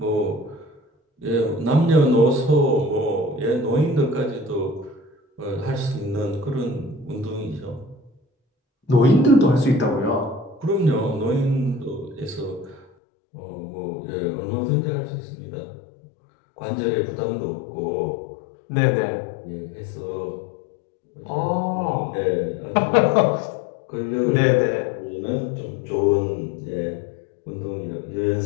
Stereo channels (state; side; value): drops out; right; at 12.9 s